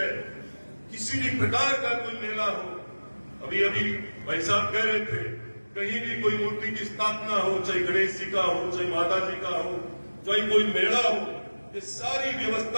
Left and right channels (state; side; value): inverted; both; correlation -1.00